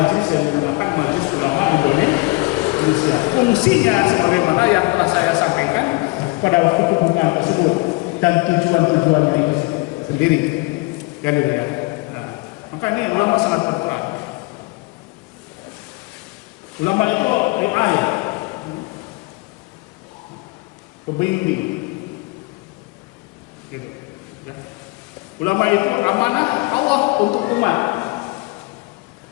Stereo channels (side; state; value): right; quieter; 24.9 dB